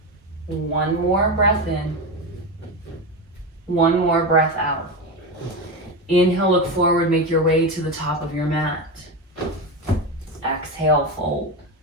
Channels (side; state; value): both; normal; correlation 0.18